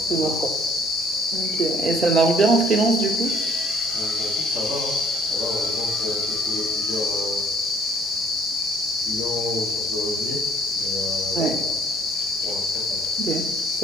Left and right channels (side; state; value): both; normal; correlation 0.59